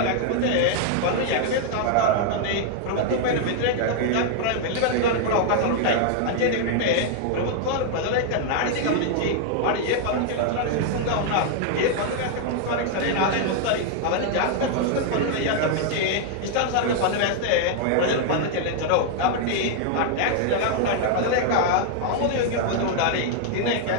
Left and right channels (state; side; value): different; both; correlation 0.00